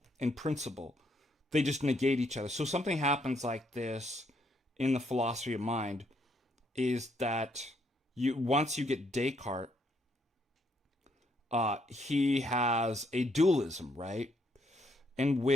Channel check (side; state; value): both; normal; correlation 0.73